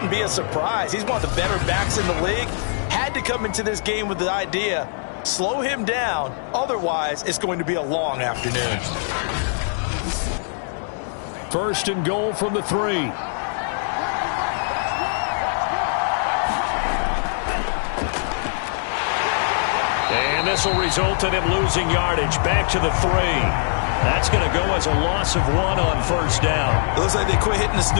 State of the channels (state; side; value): silent; right; digital silence